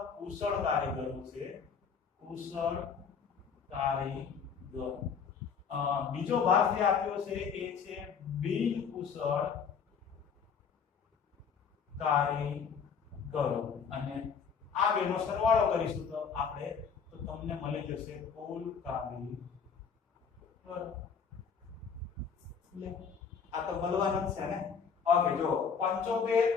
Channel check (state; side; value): quieter; right; 6.4 dB